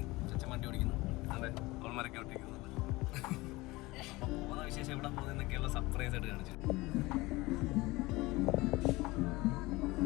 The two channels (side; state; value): right; quieter; 21.3 dB